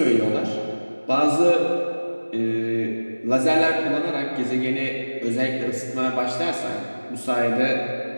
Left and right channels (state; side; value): inverted; both; correlation -1.00